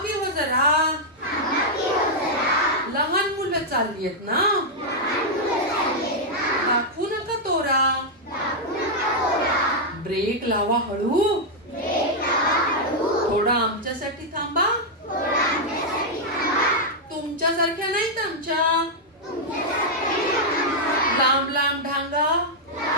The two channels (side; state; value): both; normal; correlation -0.04